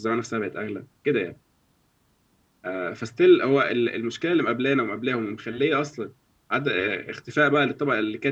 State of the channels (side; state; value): both; identical; correlation 1.00